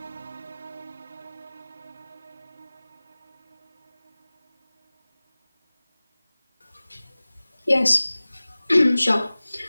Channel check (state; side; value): inverted; both; correlation -0.99